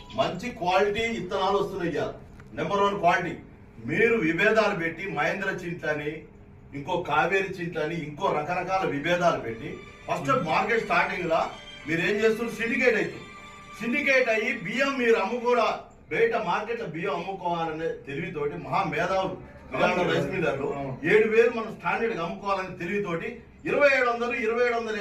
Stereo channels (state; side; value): identical; both; correlation 1.00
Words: మంచి క్వాలిటీ విత్తనాలు వస్తున్నాయి. Number 1 quality. మీరు విభేదాలు పెట్టి మహేంద్ర చింట్లని ఇంకో కావేరి చింట్లని ఇంకో రకరకాల విభేదాలు పెట్టి ఫస్ట్ మార్కెట్ స్టార్టింగ్ లా మీరు ఏం చేస్తున్నారు సిండికేట్ అవుతుంది. సిండికేట్ అయ్యి బియ్యం మీరు అమ్ముకోరా బయట మార్కెట్ లో బియ్యం అమ్ముకోవాలనే తెలివితోటి మహా మేధావులు రైస్ మిల్లర్లు 7,000 మనం స్టాండర్డ్ అమ్ముకోవాలని తెలివితోటి 2,700,